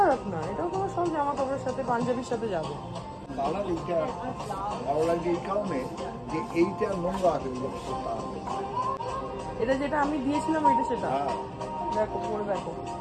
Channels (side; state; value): both; identical; correlation 1.00